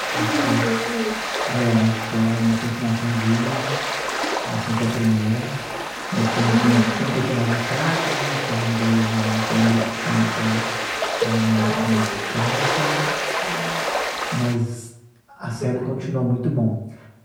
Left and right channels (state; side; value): identical; both; correlation 1.00